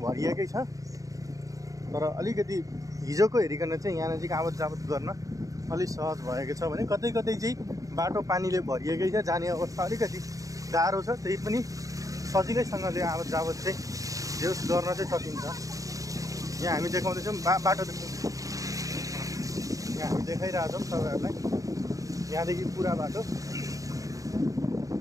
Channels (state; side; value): late; left; 0.16 ms